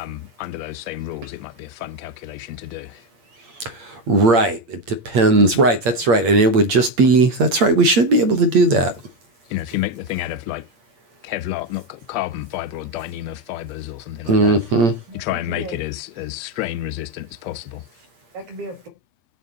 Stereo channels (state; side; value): late; left; 8.6 ms